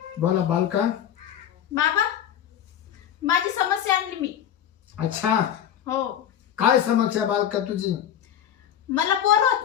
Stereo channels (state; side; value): quieter; right; 10.0 dB